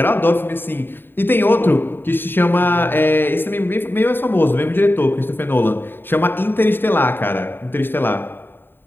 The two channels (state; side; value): late; right; 0.098 ms